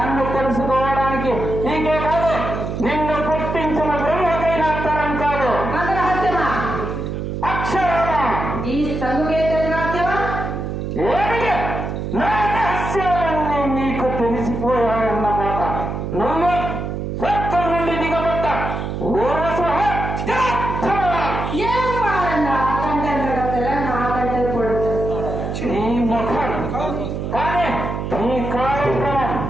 తెలుసుకోవడానికి నీకే కాదు, నిన్ను పుట్టించిన బ్రహ్మకైనా తరం కాదు. అక్షరాలా ఈ సంగుకేత రహస్యమా? ఏమిటి? నా రహస్యాలన్నీ నీకు తెలిసిపోయాయన్నమాట. నువ్వు స్వర్గం నుండి దిగబడ్డ నీ ముఖం కానీ నీ కార్యక్రమం.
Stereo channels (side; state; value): right; noise; hum, 4 dB below the sound